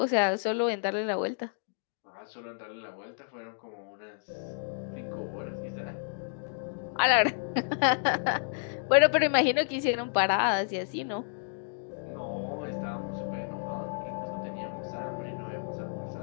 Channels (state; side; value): silent; right; digital silence